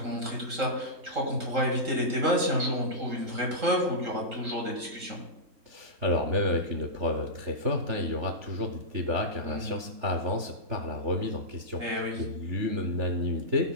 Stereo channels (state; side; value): late; left; 3.7 ms